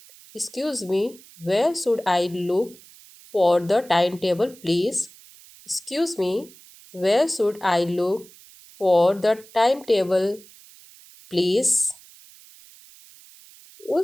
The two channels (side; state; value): right; noise; hiss, 23 dB below the sound